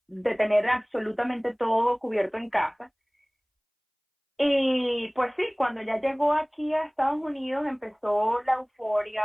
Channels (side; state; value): both; identical; correlation 1.00